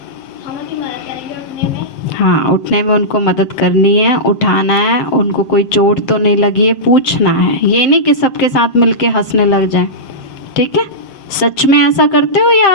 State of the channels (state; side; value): late; right; 7.7 ms